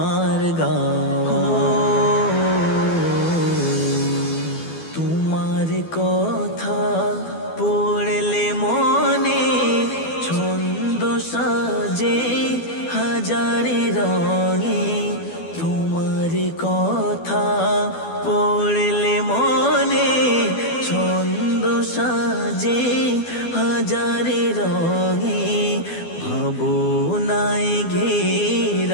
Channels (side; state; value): right; late; 12 ms